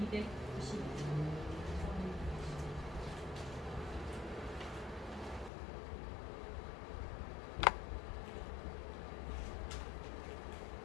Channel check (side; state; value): right; drops out; at 5.5 s